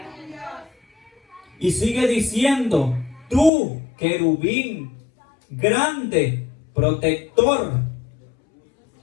Y sigue diciendo: tú, querubín, grande, protector,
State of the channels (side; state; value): right; drops out; at 3.5 s